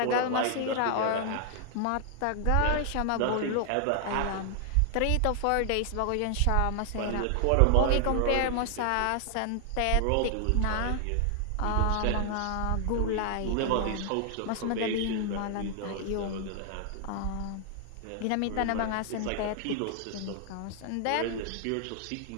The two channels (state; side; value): different; both; correlation 0.00